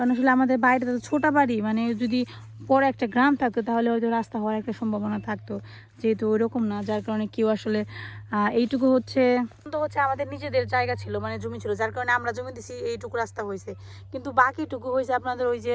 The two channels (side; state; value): both; identical; correlation 1.00